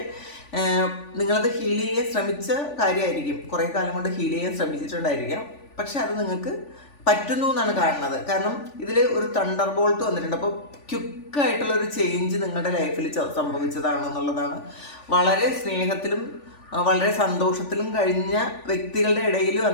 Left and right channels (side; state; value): right; late; 3.5 ms